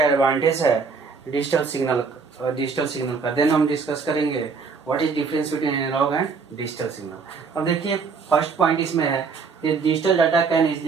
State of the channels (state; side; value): quieter; left; 5.1 dB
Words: एडवांटेज है डिजिटल सिग्नल का। देन हम डिस्कस करेंगे what is difference between analogue and digital signal. अब देखिए, फर्स्ट पॉइंट इसमें है कि digital data can